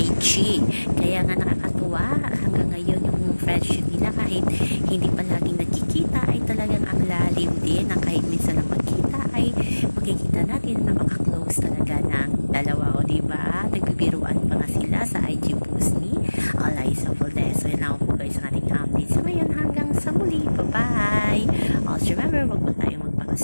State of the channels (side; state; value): both; inverted; correlation -1.00